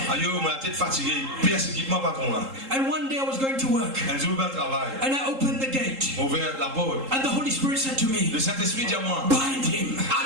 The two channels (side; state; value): left; late; 3.8 ms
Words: Aïe, ma tête fatiguée. Persécute moi, patron, là. And one day I was going to work, Un jour, je vais travailler. and I opened the gate, Ouvert la porte. and the Holy Spirit said to me, Le Saint-Esprit dit à moi, bind him,